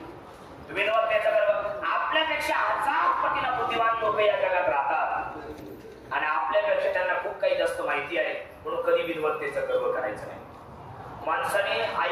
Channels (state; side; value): identical; both; correlation 1.00